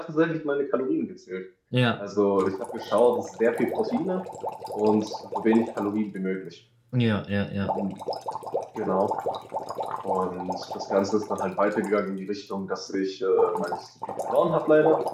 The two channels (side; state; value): both; identical; correlation 1.00